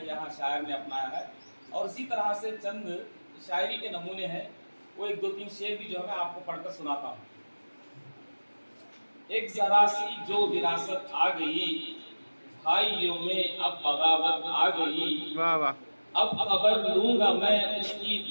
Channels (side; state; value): both; inverted; correlation -1.00